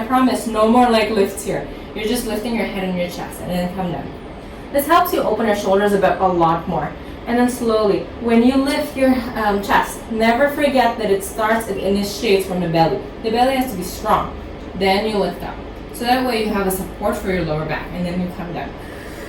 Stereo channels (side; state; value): both; identical; correlation 1.00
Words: promise, no more leg lifts here. You're just lifting your head and your chest, and then come down. This helps you open your shoulders a lot more. And then slowly, when you lift your chest, never forget that it initiates from the belly. The belly has to be strong. Then you lift up. So that way you have a support for your lower back, and then you come down.